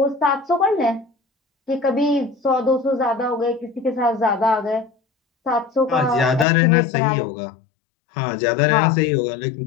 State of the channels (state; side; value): drops out; right; at 6.5 s